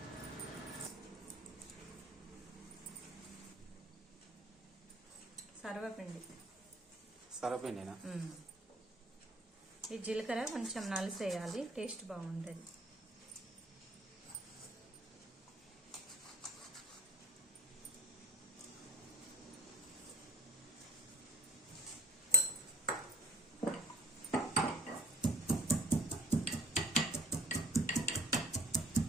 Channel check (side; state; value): both; normal; correlation 0.47